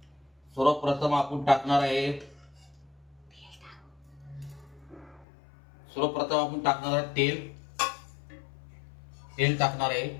सर्वप्रथम आपण टाकणार आहे तेल टाकणार आहे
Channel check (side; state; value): right; drops out; at 5.2 s